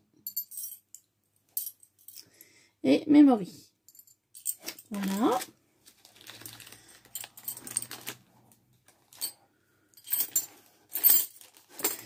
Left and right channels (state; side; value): identical; both; correlation 1.00